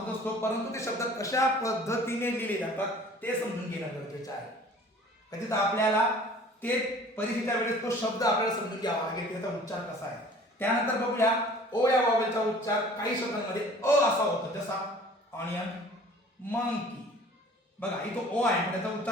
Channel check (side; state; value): both; normal; correlation 0.48